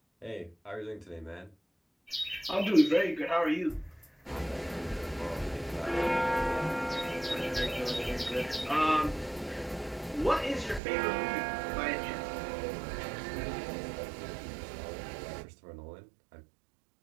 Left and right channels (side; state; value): left; drops out; at 10.8 s